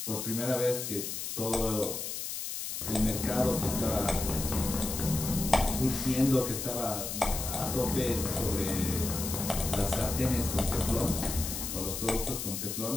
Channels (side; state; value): left; noise; hiss, 5 dB below the sound